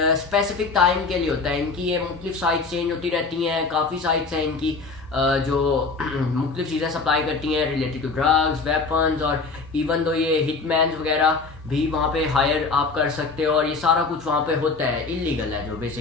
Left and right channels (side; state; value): right; quieter; 4.2 dB